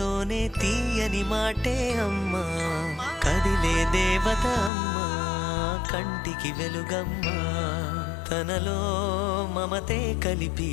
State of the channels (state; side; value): drops out; right; at 4.7 s